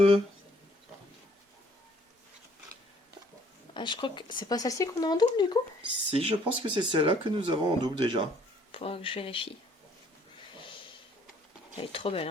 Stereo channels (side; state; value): both; normal; correlation 0.60